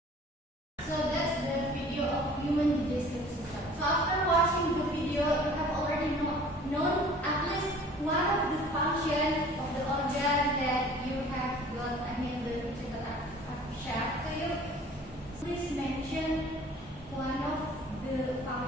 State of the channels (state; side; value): normal; both; correlation 0.49